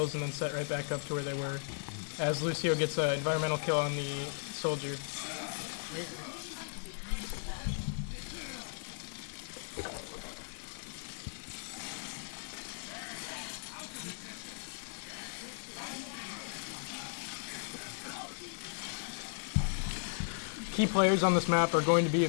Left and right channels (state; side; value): silent; right; digital silence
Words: and then set right back up to where they were, as Lucio gets an environmental kill on the Soldier. Key players on this map are going to be,